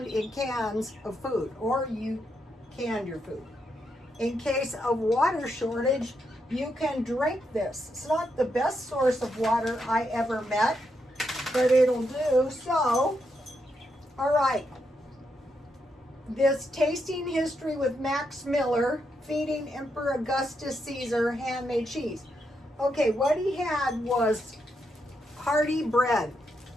in cans of food, or you canned your food. In case of water shortage, you can drink this. It's not the best source of water I ever met, but it'll do. So, all right. This tasting history with Max Miller, feeding Emperor Augustus Caesar handmade cheese. Okay, what he had was hearty bread.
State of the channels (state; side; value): normal; both; correlation 0.81